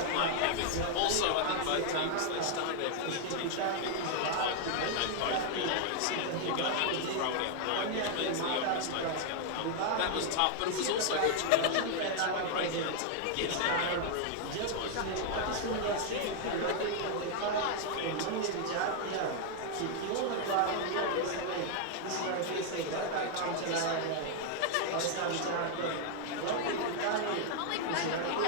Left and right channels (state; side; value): different; both; correlation 0.00